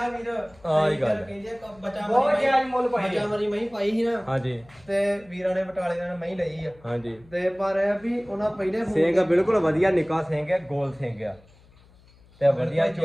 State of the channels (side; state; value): left; noise; hum, 27 dB below the sound